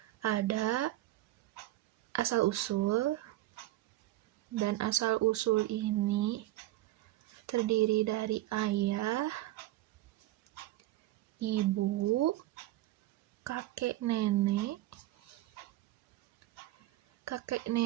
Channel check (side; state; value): left; quieter; 15.9 dB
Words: ada asal-usul, dan asal-usul ini terdiri dari ayah, ibu, kakek nenek